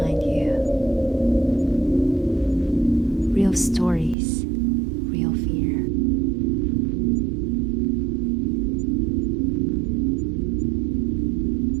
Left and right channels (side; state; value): left; drops out; at 4.2 s